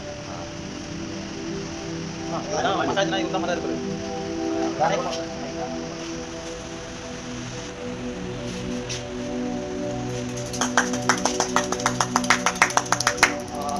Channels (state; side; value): identical; both; correlation 1.00